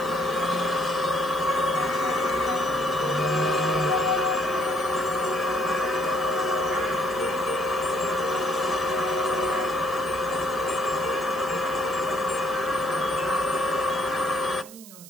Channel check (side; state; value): right; noise; hiss, 17 dB below the sound